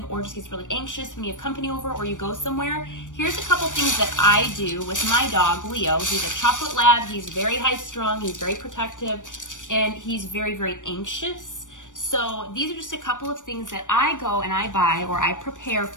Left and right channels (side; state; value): right; late; 0.87 ms